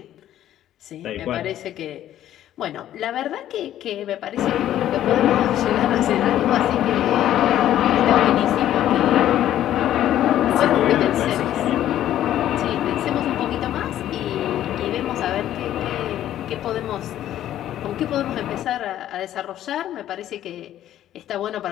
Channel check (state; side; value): quieter; right; 12.1 dB